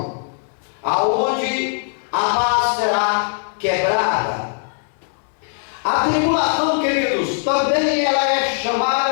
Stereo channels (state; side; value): silent; right; 66 dB below the other